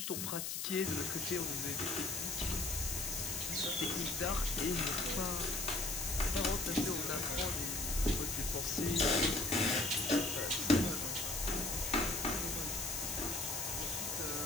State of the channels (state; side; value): noise; left; hiss, 3 dB below the sound